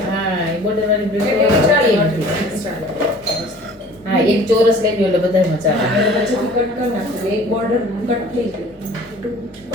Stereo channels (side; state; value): both; normal; correlation 0.48